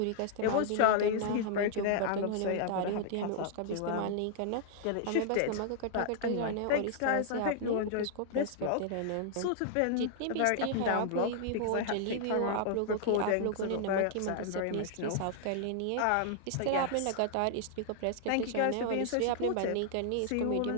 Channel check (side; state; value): both; different; correlation -0.01